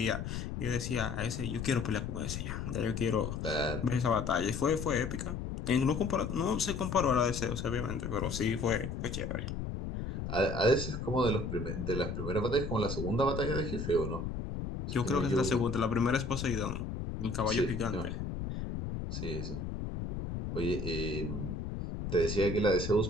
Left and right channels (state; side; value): noise; left; rumble, 4 dB below the sound